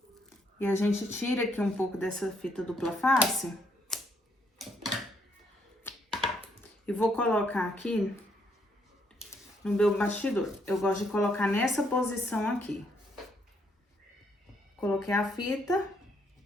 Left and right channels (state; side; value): normal; both; correlation 0.72